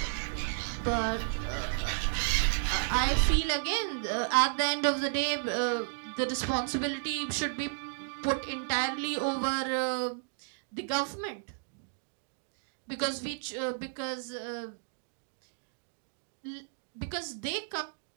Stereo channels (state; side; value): silent; left; digital silence